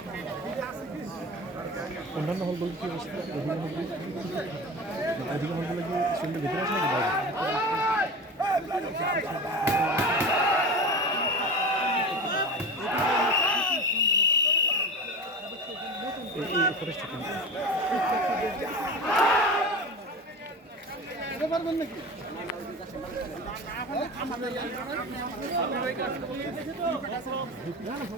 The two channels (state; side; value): normal; both; correlation 0.29